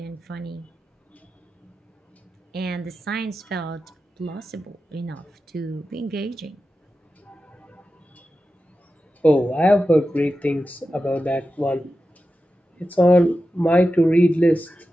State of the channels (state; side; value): normal; both; correlation 0.92